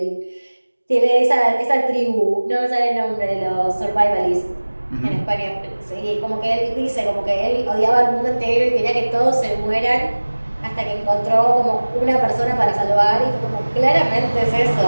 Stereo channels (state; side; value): inverted; both; correlation -1.00